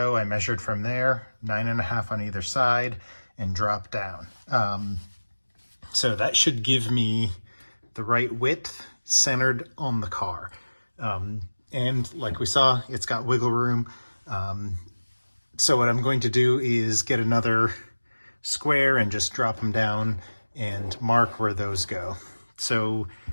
I measured from there, 9.5 on either side, and dropped down. So that should give me the right width centered on the car. And like we saw, it's got wiggle room. So what I'm going to do is get another square and just drop them down and mark where those go. So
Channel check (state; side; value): inverted; both; correlation -1.00